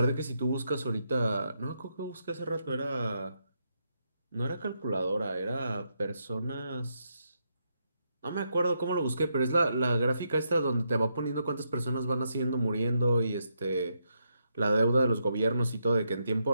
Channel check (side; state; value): both; inverted; correlation -0.81